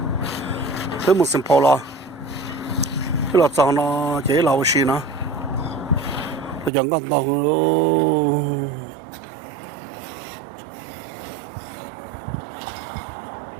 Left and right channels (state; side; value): drops out; left; at 6.7 s